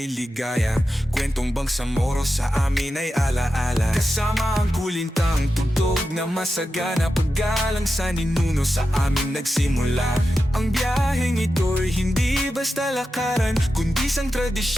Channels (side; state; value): both; normal; correlation 0.91